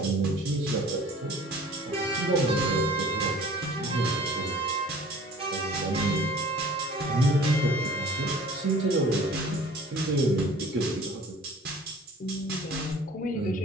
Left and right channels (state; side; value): normal; both; correlation 0.48